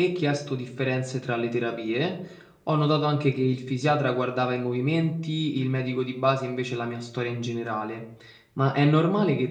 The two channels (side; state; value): both; identical; correlation 1.00